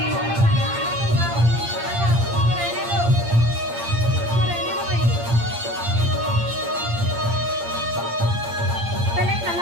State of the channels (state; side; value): late; left; 8.7 ms